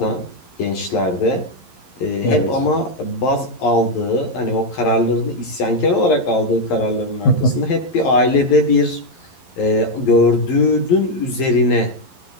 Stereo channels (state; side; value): late; right; 11 ms